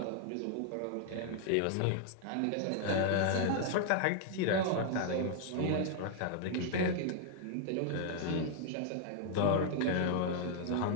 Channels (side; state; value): both; different; correlation -0.01